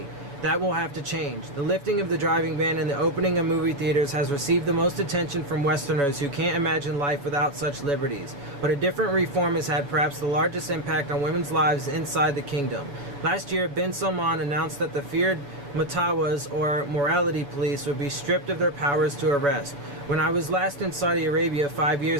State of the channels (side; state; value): left; late; 7.1 ms